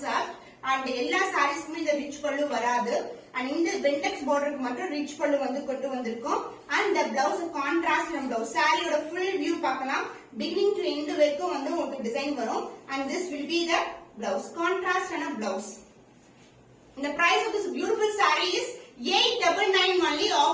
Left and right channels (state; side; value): identical; both; correlation 1.00